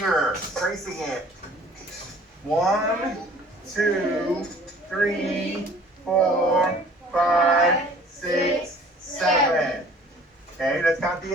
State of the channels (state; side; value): normal; both; correlation 0.51